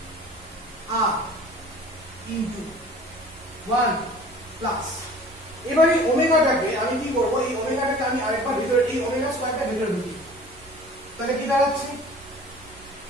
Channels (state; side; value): noise; right; hum, 24 dB below the sound